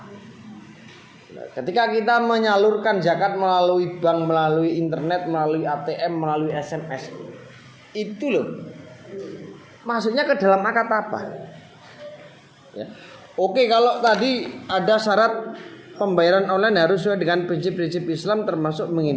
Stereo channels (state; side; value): identical; both; correlation 1.00